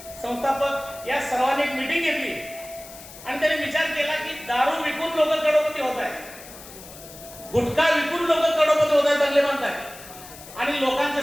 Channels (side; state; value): left; noise; hiss, 17 dB below the sound